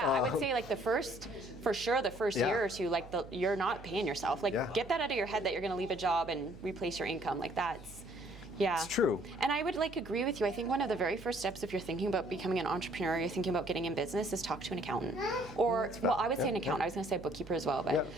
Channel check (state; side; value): noise; right; hum, 17 dB below the sound